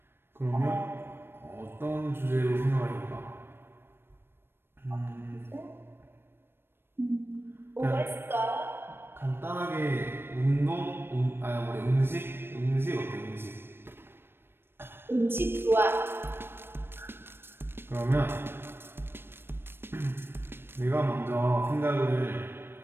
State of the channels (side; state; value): left; late; 0.11 ms